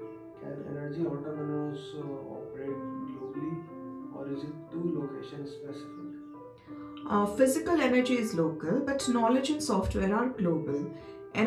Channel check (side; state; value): both; identical; correlation 1.00